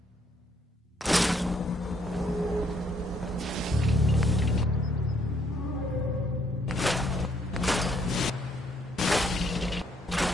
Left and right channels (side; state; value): both; normal; correlation 0.69